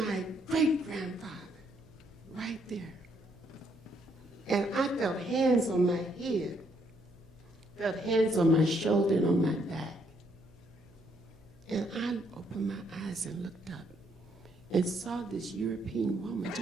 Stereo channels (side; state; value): right; noise; hum, 28 dB below the sound